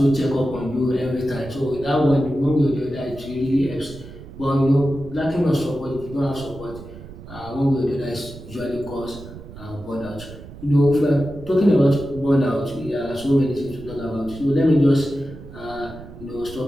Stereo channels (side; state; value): right; noise; rumble, 15 dB below the sound